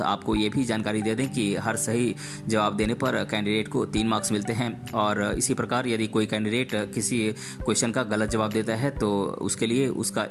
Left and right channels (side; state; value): both; identical; correlation 1.00